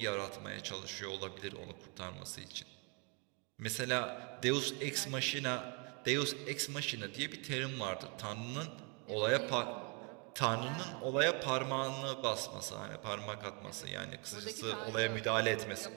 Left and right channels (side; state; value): left; quieter; 34.6 dB